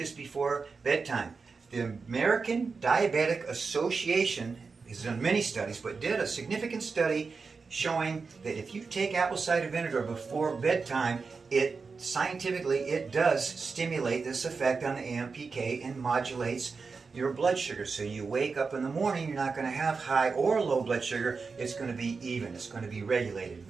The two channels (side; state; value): left; quieter; 4.7 dB